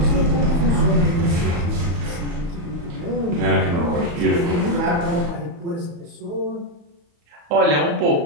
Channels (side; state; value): left; late; 34 ms